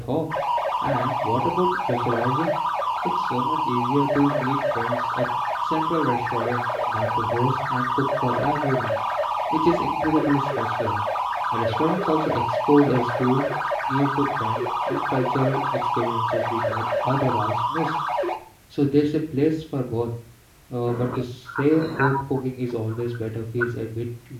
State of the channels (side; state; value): both; identical; correlation 1.00